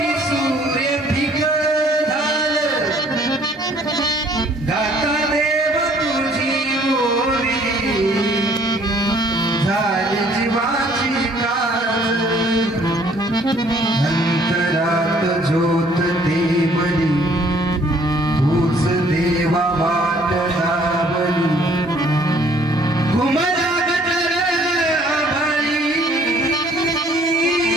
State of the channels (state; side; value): normal; both; correlation 0.60